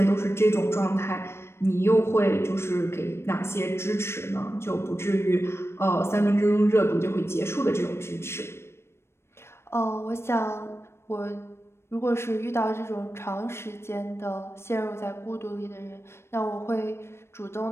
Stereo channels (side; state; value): right; late; 0.12 ms